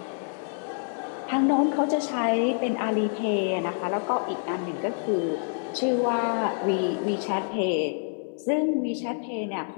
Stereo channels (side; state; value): right; silent; 57 dB below the other